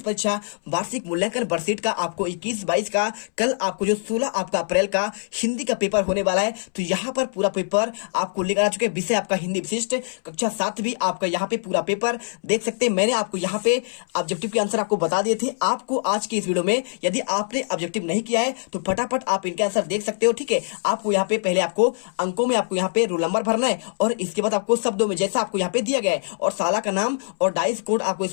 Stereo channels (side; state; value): right; silent; 63 dB below the other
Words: परीक्षा वार्षिक मूल्यांकन वर्कशीट का आपको 21-22 का कल आपको जो 16 आपका अप्रैल का हिंदी का पेपर होने वाला है। तो यहाँ पर पूरा पेपर आपको लेकर आ चुके हैं। विषय आपका हिंदी विशिष्ट कक्षा 7वीं आपका यहाँ पे पूरा पेपर देख सकते हैं। मैंने आपको यहाँ पे ऑब्जेक्टिव के आंसर आपको बता दिए थे। आपको आज के इस वीडियो में यदि आपने ऑब्जेक्टिव नहीं किया है तो फटाफट आप इनके आंसर देख सकते हो। ठीक है, आपको यहाँ पे पहले आपको अंकों में आपको यहाँ पे रोल नंबर भरना है और इसके बाद आपको शब्दों में जैसा आपको यहाँ पे दिया गया है और साला का नाम और डाइस कोड आपको